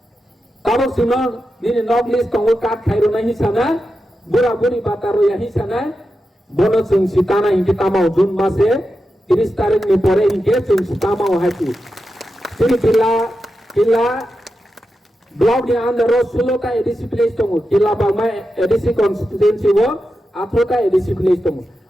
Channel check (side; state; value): both; normal; correlation 0.89